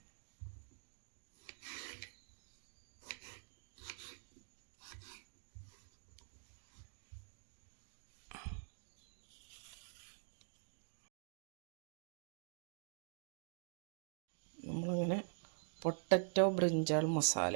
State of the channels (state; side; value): silent; left; digital silence